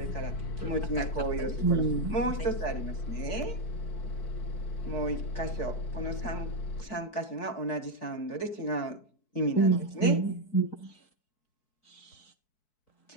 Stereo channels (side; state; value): right; late; 4.6 ms